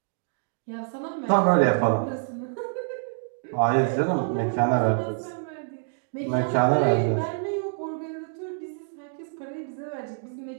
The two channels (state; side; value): silent; left; digital silence